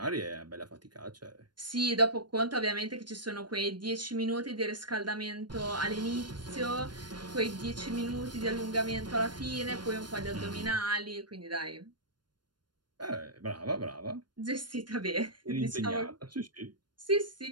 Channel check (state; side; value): late; left; 0.71 ms